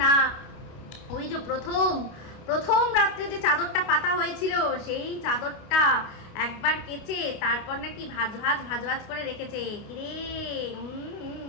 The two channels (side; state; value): right; late; 29 ms